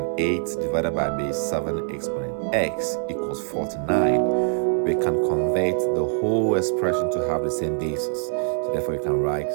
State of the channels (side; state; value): left; silent; digital silence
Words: 8 divided by base 7 exponent x equals 49. We can convert the whole expression to have the same basis. So therefore, you can write